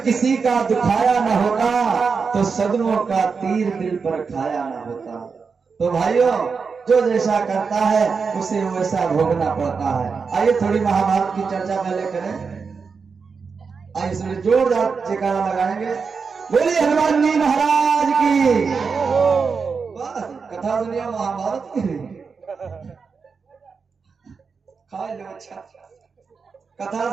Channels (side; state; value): left; quieter; 5.3 dB